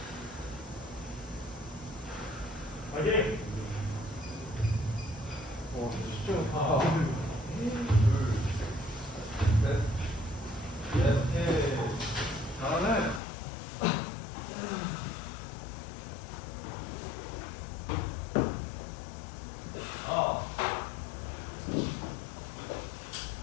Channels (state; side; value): drops out; right; at 13.2 s